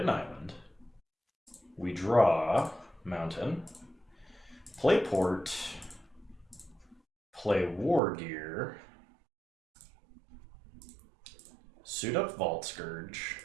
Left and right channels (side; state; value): left; drops out; at 8.0 s